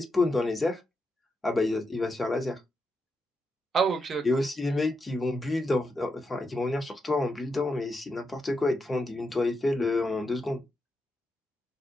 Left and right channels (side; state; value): both; normal; correlation 0.85